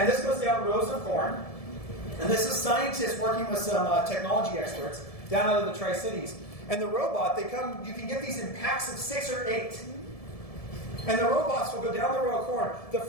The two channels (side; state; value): right; late; 1.7 ms